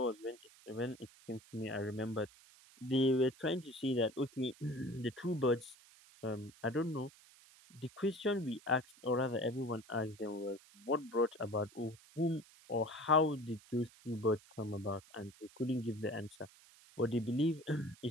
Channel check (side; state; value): right; noise; hiss, 24 dB below the sound